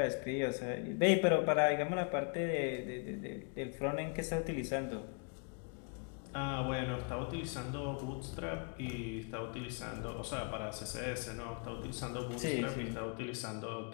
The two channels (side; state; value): right; quieter; 37.0 dB